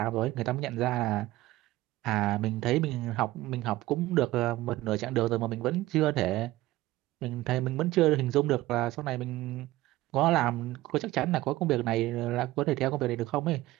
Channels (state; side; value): quieter; left; 17.2 dB